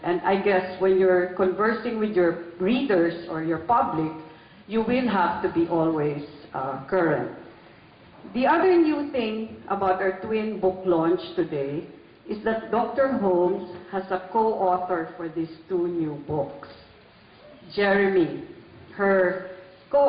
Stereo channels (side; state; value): both; identical; correlation 1.00